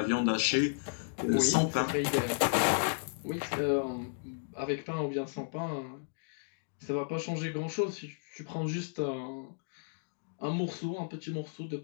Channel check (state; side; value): silent; right; digital silence